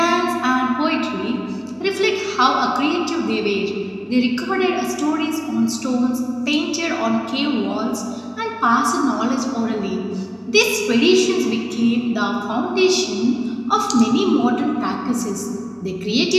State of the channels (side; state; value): both; identical; correlation 1.00